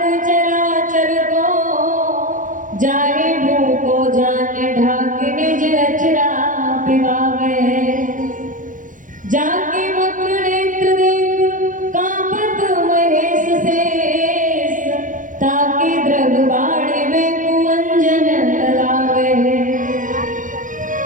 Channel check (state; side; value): late; left; 0.38 ms